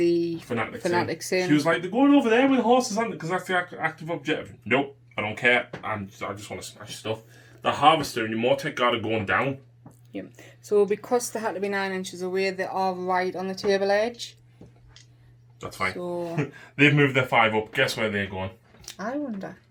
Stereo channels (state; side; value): identical; both; correlation 1.00